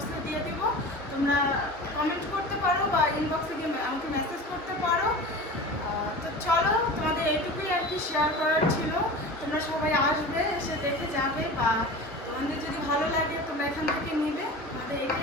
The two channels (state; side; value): normal; both; correlation 0.34